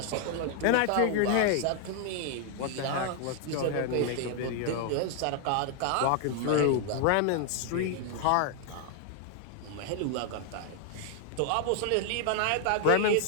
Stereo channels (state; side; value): different; both; correlation 0.00